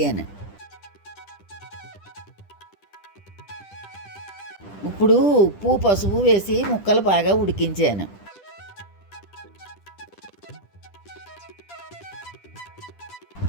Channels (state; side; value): late; right; 10 ms